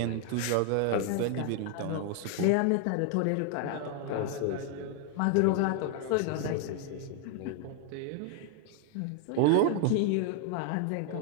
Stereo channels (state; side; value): different; both; correlation 0.00